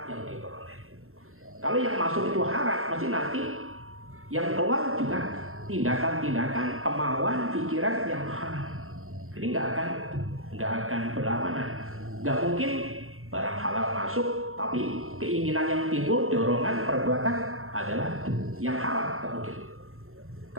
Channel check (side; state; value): left; late; 0.62 ms